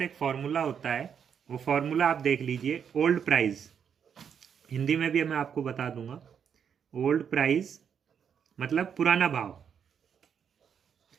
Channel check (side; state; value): left; quieter; 7.6 dB